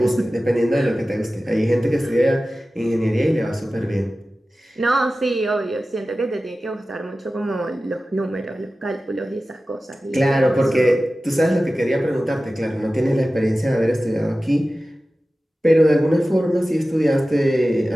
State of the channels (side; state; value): both; normal; correlation 0.95